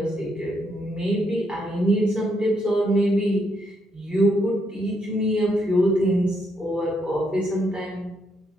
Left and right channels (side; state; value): both; normal; correlation 0.76